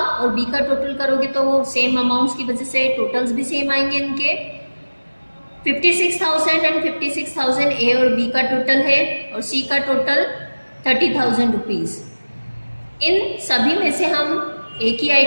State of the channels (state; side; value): inverted; both; correlation -1.00